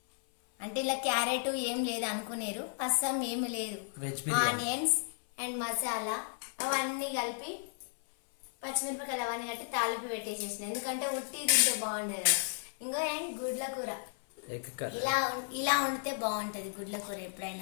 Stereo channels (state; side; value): silent; right; 55 dB below the other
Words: అంటే ఇలా క్యారెట్ ఏం లేదు అనుకునేరు, అస్సం ఏమి లేదు, ఆనియన్స్ అండ్ మసాలా అవన్నీ కలిపి పచ్చిమిరపకాయలు అవన్నీ కట్టి తాలింపు పెట్టేసేసిన. ఎందుకంటే ఉట్టి తింటే బాగుండదు కదా. ఇంకో అండ్ గుడ్ల కూర ఇలా ఉంటే బాగుంటది. గుడ్ల కూర